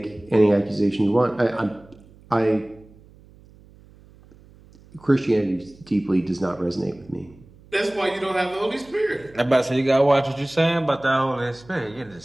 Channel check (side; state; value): right; noise; hum, 25 dB below the sound